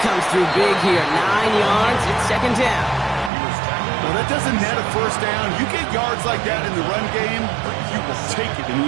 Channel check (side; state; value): left; drops out; at 3.3 s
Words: through big here. 9 yards, it's second down. Well, that doesn't net a first down. You get yards like that in the run game, you will take it in